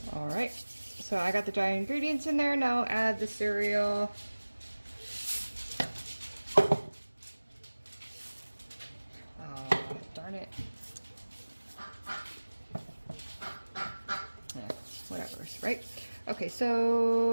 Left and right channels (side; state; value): both; inverted; correlation -1.00